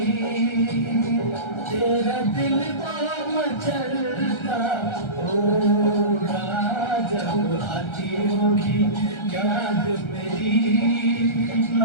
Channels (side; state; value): right; late; 1.3 ms